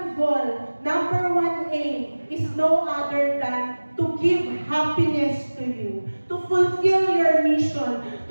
goal, number one aim is no other than to give happiness to you, to fulfill your mission,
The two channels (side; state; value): both; inverted; correlation -1.00